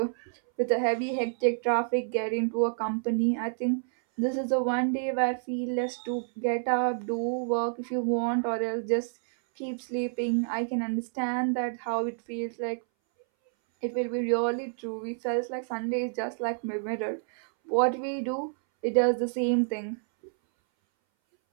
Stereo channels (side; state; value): left; silent; 59 dB below the other